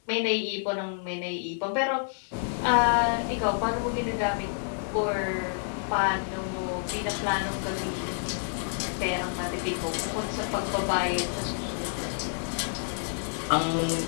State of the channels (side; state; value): right; silent; digital silence